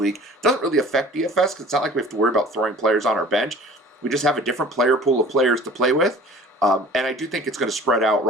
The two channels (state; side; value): normal; both; correlation 0.46